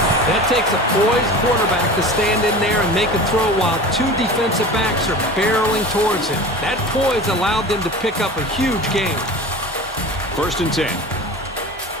That takes a poised quarterback to stand in there and make a throw while 2 defensive backs are barreling towards him. That poise allowed them to pick up a huge gain. 1st and 10.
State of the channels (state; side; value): normal; both; correlation 0.35